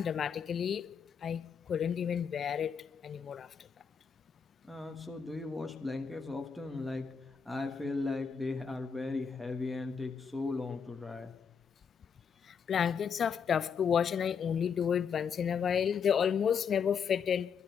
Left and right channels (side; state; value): right; quieter; 6.6 dB